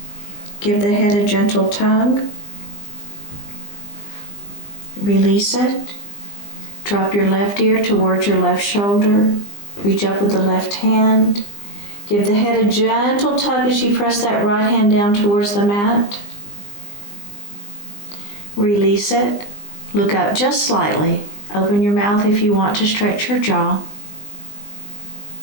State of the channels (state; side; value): late; right; 20 ms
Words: Give the head a gentle tug. Release it. Drop your left ear towards your left shoulder. Reach up with the left hand. Give the head a gentle tug as you press that right hand down towards the mat. Release it. Look up just slightly. Open your mouth if you want to stretch your jaw.